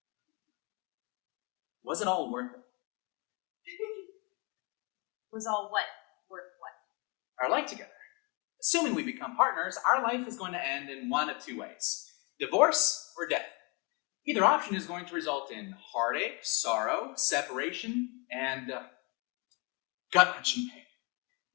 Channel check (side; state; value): right; quieter; 31.1 dB